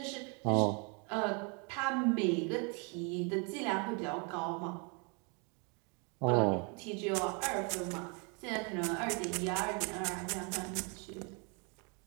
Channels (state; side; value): quieter; left; 34.5 dB